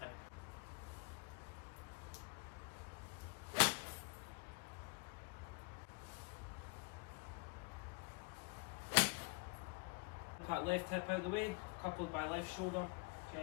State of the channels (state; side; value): quieter; right; 29.8 dB